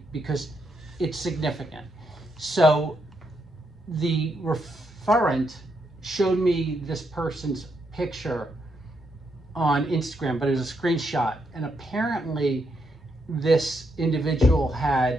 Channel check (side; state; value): both; normal; correlation 0.79